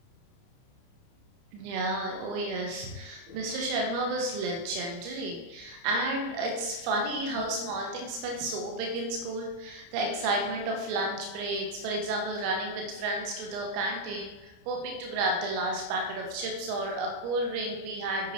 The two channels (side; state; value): left; late; 30 ms